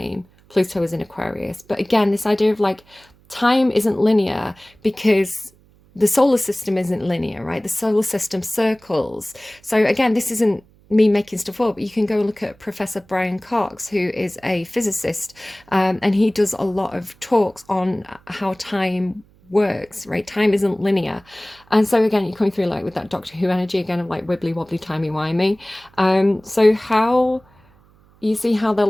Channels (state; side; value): noise; right; hum, 30 dB below the sound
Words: Pluto was in Aquarius. But again, this idea of like time isn't linear, because the solar system isn't linear, right? The solar system circles. So again, this isn't me making stuff up. You can go look at Professor Brian Cox, who is a physicist, and he does a lot of talks on how time works, right? Time isn't linear. And so again, you're coming through like with that Doctor Who energy again of like wibbly wobbly timey wimey. So how you see how they're